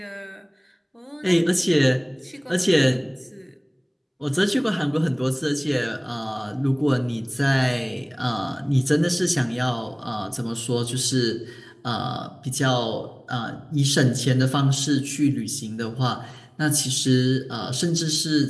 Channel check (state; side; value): identical; both; correlation 1.00